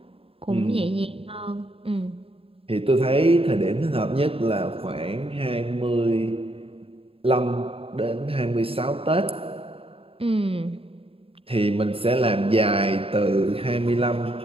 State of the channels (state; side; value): late; left; 0.27 ms